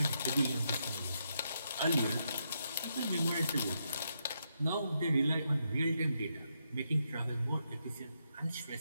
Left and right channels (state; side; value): inverted; both; correlation -0.81